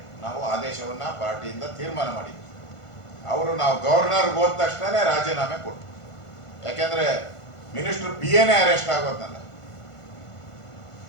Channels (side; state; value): right; late; 1.5 ms